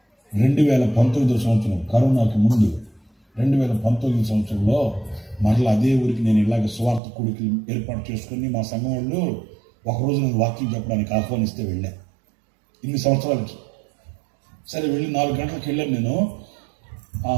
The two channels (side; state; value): left; drops out; at 7.0 s